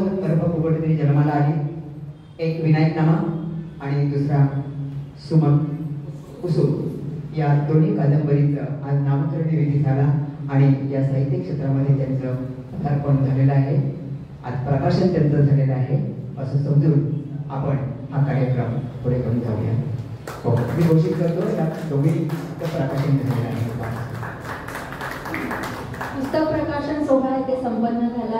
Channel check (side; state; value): both; identical; correlation 1.00